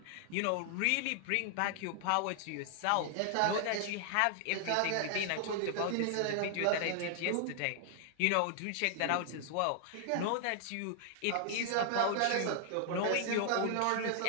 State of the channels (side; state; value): both; different; correlation 0.00